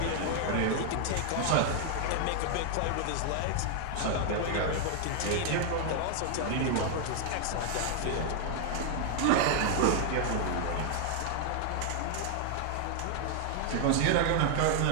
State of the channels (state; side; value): different; both; correlation 0.00